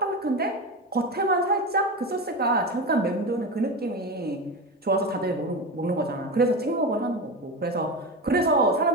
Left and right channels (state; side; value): normal; both; correlation 0.22